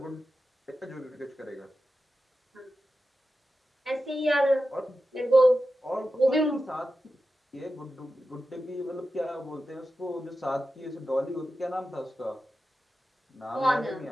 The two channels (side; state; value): both; normal; correlation 0.92